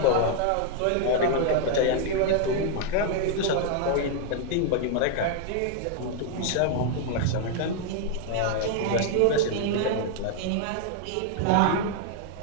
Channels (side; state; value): both; different; correlation 0.00